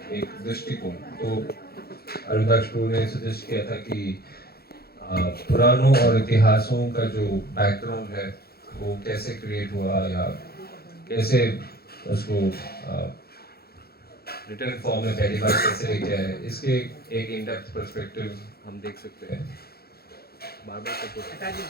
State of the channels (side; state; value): right; late; 0.45 ms